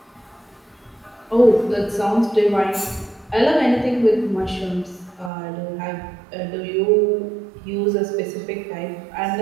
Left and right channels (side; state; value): left; drops out; at 5.3 s